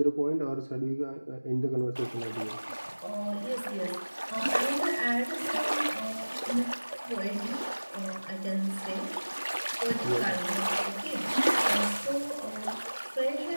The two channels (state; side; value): inverted; both; correlation -1.00